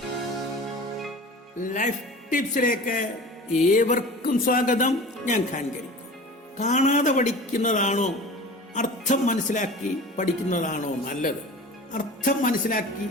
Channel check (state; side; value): normal; both; correlation 0.38